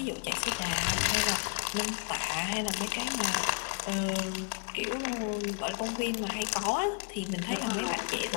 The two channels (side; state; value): right; quieter; 33.2 dB